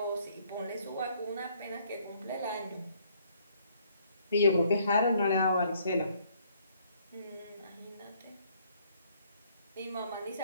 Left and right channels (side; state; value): both; inverted; correlation -0.65